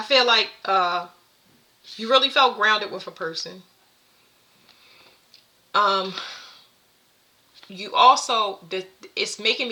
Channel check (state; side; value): identical; both; correlation 1.00